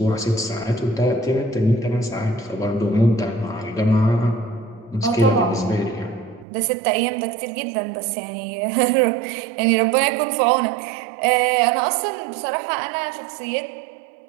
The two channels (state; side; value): drops out; left; at 6.5 s